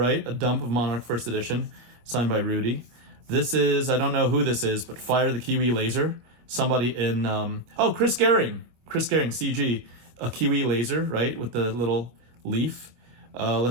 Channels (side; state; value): left; late; 25 ms